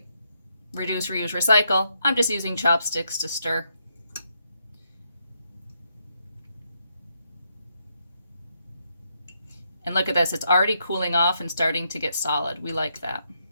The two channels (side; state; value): both; inverted; correlation -0.78